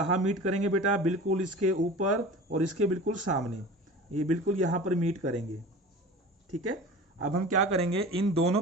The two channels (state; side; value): normal; both; correlation 0.37